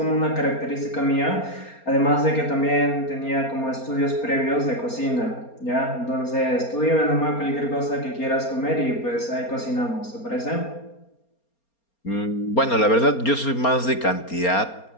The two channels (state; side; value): late; right; 4.3 ms